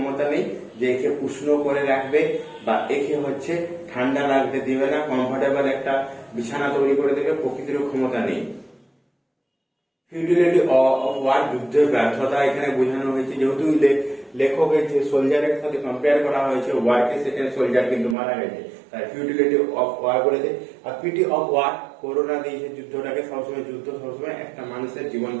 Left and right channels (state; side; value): drops out; left; at 18.2 s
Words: নেই যে একে উষ্ণ করে রাখবে বা একে হচ্ছে ঠান্ডা লাগতে দিবে না, কমফোর্টেবল একটা বিছানা তৈরি করে দেবে, প্রকৃতিরও ক্ষমতা নেই। ফিউটিলিটি অফ ওয়ার, যুদ্ধের ব্যর্থতা এখানে বোঝানো হয়েছে, যেহেতু লেখকের যে সোলজারের সাথে কম্পেয়ার করা হয়েছে ওয়ারকে, সেখানে সোলজার কিন্তু মারা গেছে, তাই ফিউটিলিটি অফ ওয়ার বলেছে। আর পিটি অফ ওয়ার, করোনা দিয়েছে যুদ্ধটাকে, সবসময় যুদ্ধ সবসময় একটা মানুষের জীবন